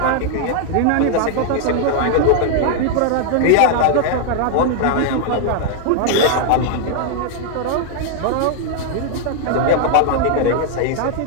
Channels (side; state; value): both; different; correlation 0.00